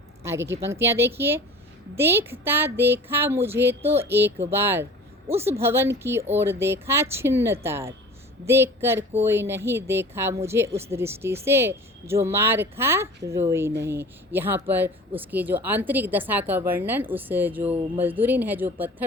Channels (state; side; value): normal; both; correlation 0.41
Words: आगे की पंक्तियाँ देखिए। देखता देखा मुझे तो एक बार, उस भवन की ओर देखा छिन्न तार, देखकर कोई नहीं देखा मुझे उस दृष्टि से, जो मार खा रोई नहीं। यहाँ पर उसकी जो आंतरिक दशा का वर्णन, उस जो मजदूरिन है जो